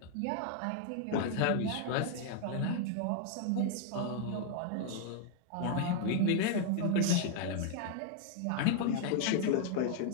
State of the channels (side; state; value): both; different; correlation 0.00